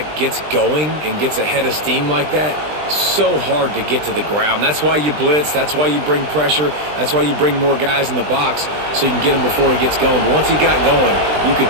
gets going and gets ahead of steam like that, so hard to get to the ground. That's why you blitz. That's why you bring pressure. That's why you bring more guys in the box so you can get him before he gets going. But once he got going, you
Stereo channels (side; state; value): left; late; 20 ms